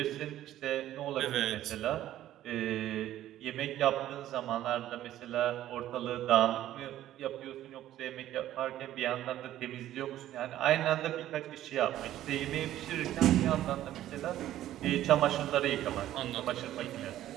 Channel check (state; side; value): quieter; left; 13.1 dB